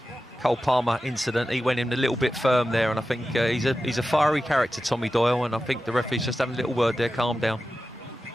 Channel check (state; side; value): normal; both; correlation 0.93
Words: Cole Palmer incident, he went in a little bit firm there, and I think he's a fiery character, Tommy Doyle, and I think the referee's just having a little word there, calm down.